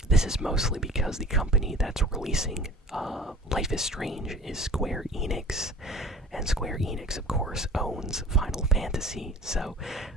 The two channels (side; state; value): both; normal; correlation 0.43